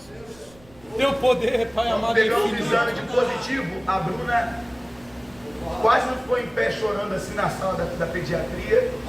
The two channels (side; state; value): right; noise; rumble, 26 dB below the sound